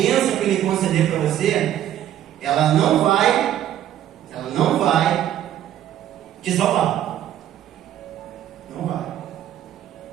que Ele conceder para você, ela não vai te salvar. Não vai.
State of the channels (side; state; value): left; quieter; 11.5 dB